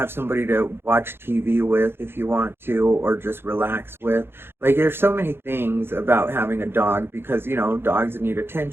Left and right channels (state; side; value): late; left; 0.11 ms